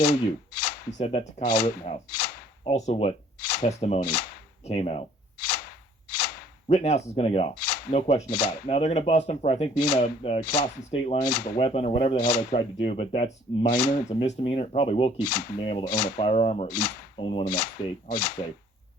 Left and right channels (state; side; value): normal; both; correlation 0.57